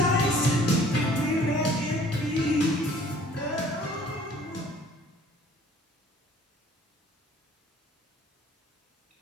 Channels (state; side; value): normal; both; correlation 0.54